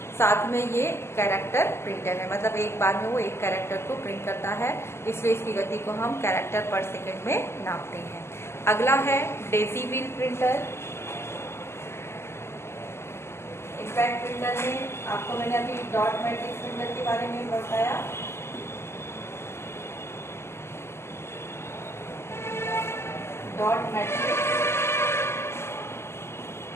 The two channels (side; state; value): right; late; 0.12 ms